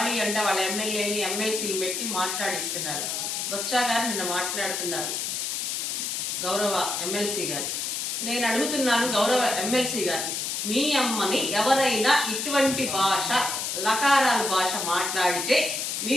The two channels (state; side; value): noise; left; hiss, 2 dB below the sound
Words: అంటే వాళ్ళ ఎమ్మెల్యేని ఎమ్మెల్సీలు పెట్టి మాట్లాడిస్తున్నారు. బొత్స గారు నిన్న మాట్లాడుతున్నారు, గౌరవ ఎమ్మెల్సీ గారు. నేను అడుగుతున్నాను, గౌరవ ఎమ్మెల్సీ గారు, మీ అమ్మని ఎవరైనా ఇటువంటి భాష, లకారాల భాష మాట్లాడితే